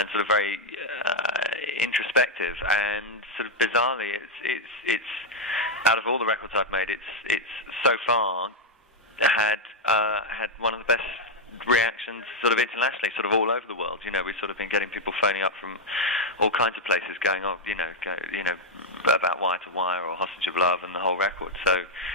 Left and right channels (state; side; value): normal; both; correlation 0.01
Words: sort of very introspective. And sort of bizarrely, it's out of all the records I've made, it's so far had one of the best reactions sort of internationally, sort of all over the world. We've sort of been getting people phoning up from all kinds of places going, about Wire to Wire or Hostage of Love and the whole record. So